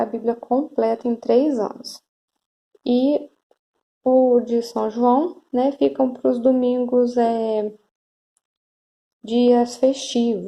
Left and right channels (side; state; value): both; identical; correlation 1.00